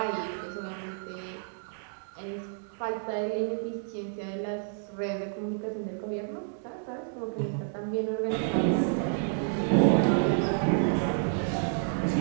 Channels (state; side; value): silent; left; digital silence